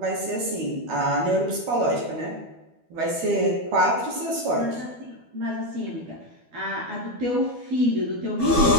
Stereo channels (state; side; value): late; left; 12 ms